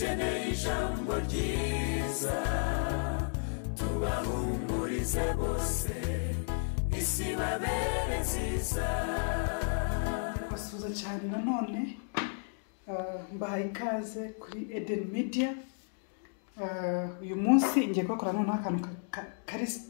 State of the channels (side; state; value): right; silent; digital silence